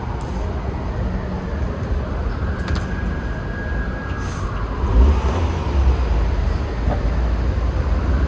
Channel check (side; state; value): both; identical; correlation 1.00